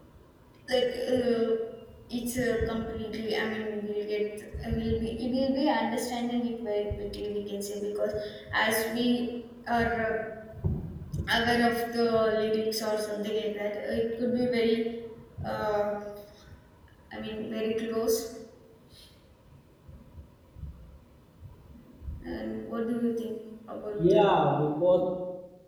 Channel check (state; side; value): identical; both; correlation 1.00